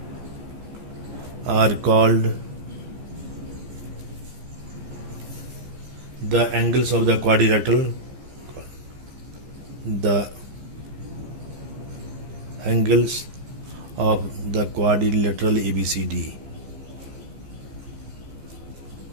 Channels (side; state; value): left; late; 15 ms